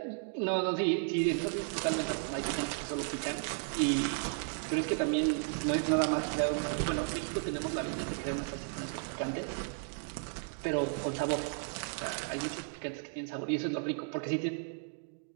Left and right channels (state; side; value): silent; left; 55 dB below the other